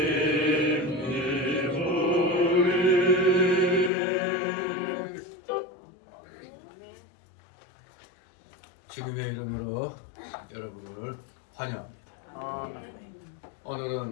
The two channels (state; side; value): drops out; right; at 3.9 s